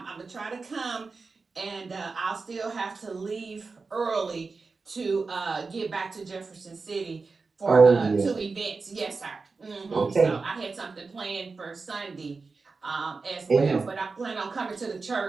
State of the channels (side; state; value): left; quieter; 4.3 dB